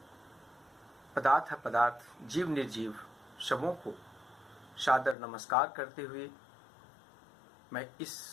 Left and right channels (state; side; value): drops out; right; at 5.2 s